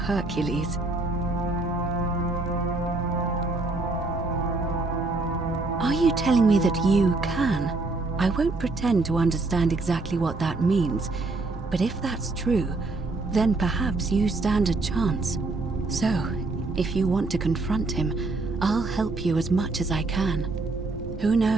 Are you telling me that you can? I won't pretend to understand exactly what that means, but if that's true, then perhaps you stand a chance. So, if you want to confront him, I'll help you as much as I can. Who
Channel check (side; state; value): left; quieter; 3.3 dB